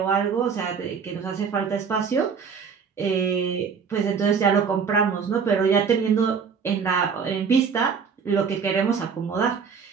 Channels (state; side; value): quieter; left; 6.1 dB